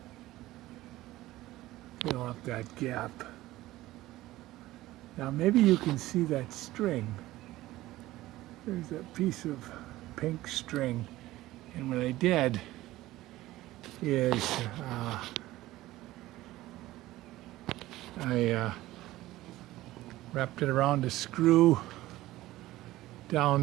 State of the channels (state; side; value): quieter; left; 16.7 dB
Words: fill up that gap. Now maybe you can see that string. There's that piece of pink string, and what I did is I wrapped it around a screw